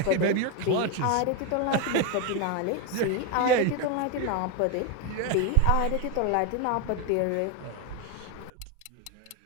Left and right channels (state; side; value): different; both; correlation 0.02